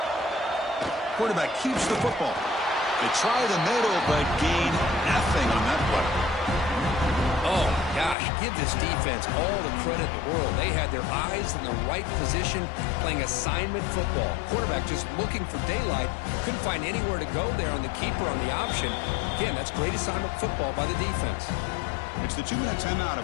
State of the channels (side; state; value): right; drops out; at 8.2 s